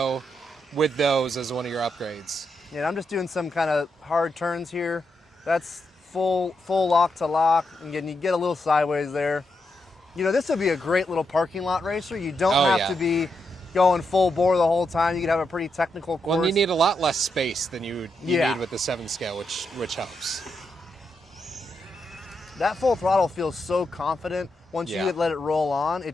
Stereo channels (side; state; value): both; normal; correlation 0.83